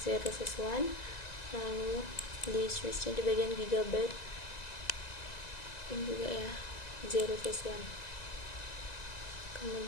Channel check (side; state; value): right; late; 1.9 ms